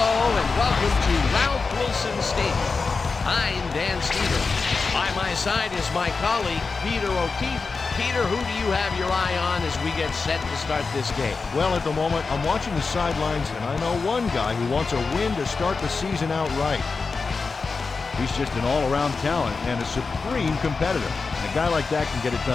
and welcome to Ralph Wilson Stadium. I'm Dan Stevens. By my side is my colleague, Peter O'Keefe. Peter, who do you have your eye on as we get set to start this game? Well, at the moment, I'm watching the sidelines, and I know one guy who wants a win to start the season out right. He's just an all-around talent and a supreme competitor. And a guy like that can get it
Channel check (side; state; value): right; quieter; 4.5 dB